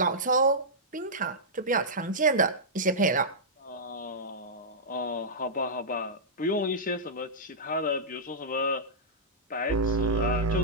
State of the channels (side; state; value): both; normal; correlation -0.13